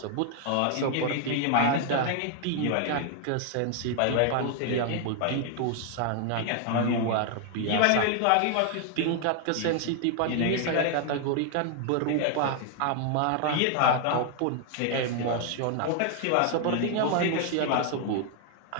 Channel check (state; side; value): different; both; correlation 0.00